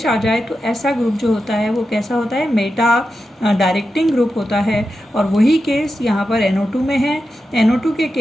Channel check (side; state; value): both; normal; correlation 0.90